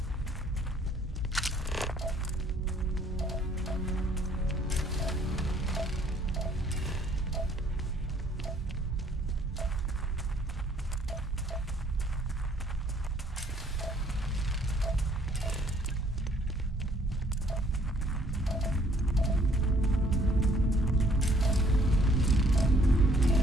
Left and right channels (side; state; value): both; normal; correlation 0.62